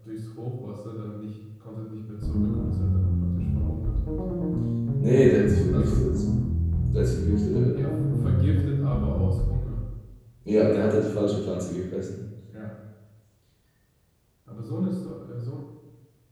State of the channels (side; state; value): both; identical; correlation 1.00